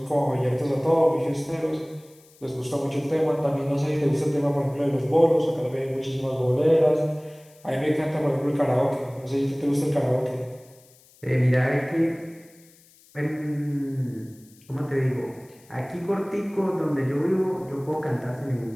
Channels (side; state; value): left; noise; hiss, 28 dB below the sound